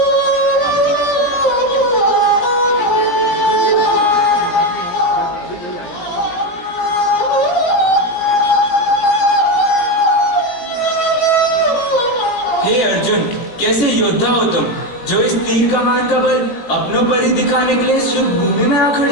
हे अर्जुन, कैसे योद्धा हो तुम, जो इस तीर कमान का बल अपनों पर ही दिखाने के लिए शुभ भूमि में आ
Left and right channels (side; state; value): right; late; 17 ms